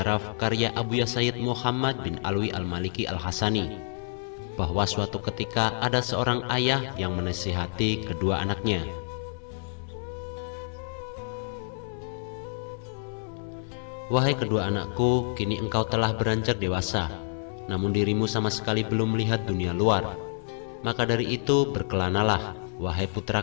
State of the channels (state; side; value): silent; right; 59 dB below the other